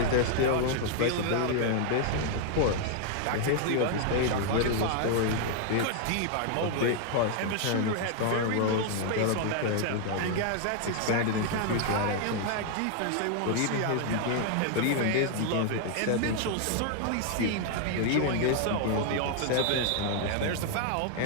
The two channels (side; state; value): both; different; correlation 0.00